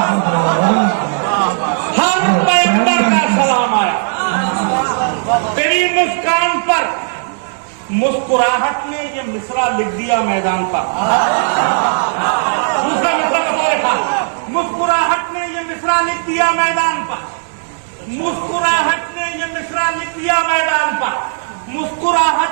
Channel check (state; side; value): silent; left; digital silence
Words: हर पैगंबर का सलाम आया तेरी मुस्कान पर। मुस्कुराहट ने ये मिसरा लिख दिया मैदान पर। दूसरा मिसरा कब लिखा? मुस्कुराहट ने ये मिसरा लिख दिया मैदान पर। मुस्कुराहट ने ये मिसरा लिख दिया मैदान पर।